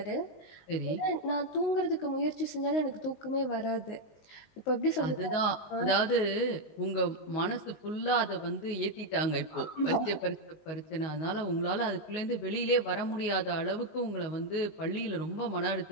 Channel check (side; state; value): right; late; 19 ms